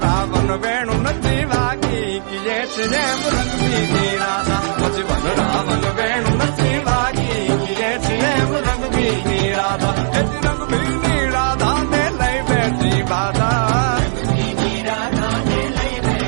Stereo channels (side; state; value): left; silent; digital silence